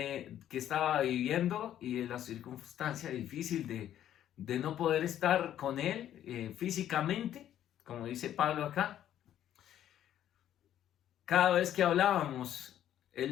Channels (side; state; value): right; quieter; 11.2 dB